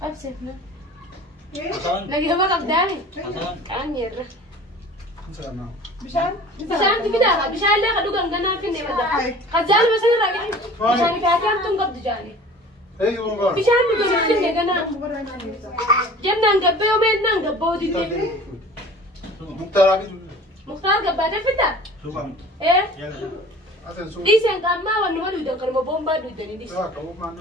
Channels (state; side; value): normal; both; correlation 0.44